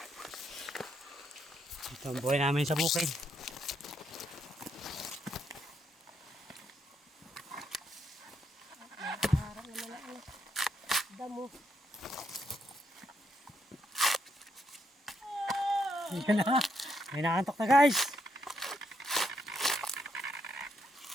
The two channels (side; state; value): both; normal; correlation 0.77